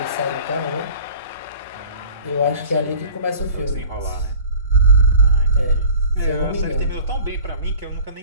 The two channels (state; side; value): inverted; both; correlation -0.45